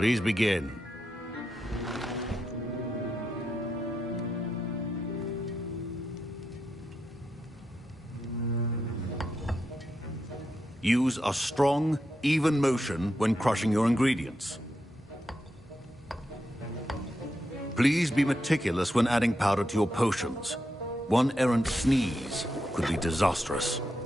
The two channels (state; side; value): normal; both; correlation 0.85